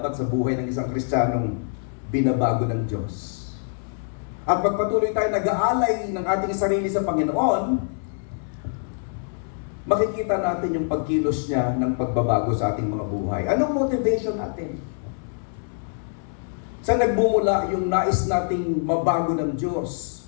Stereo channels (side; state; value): right; silent; 62 dB below the other